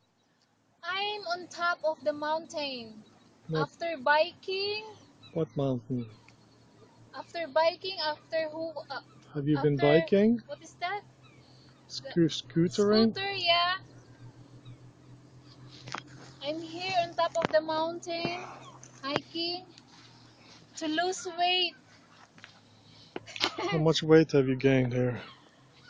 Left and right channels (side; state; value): both; identical; correlation 1.00